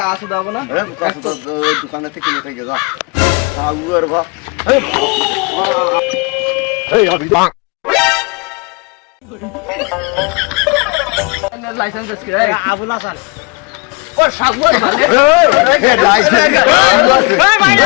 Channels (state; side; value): quieter; right; 29.6 dB